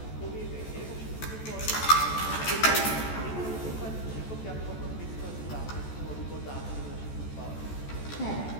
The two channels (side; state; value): right; late; 14 ms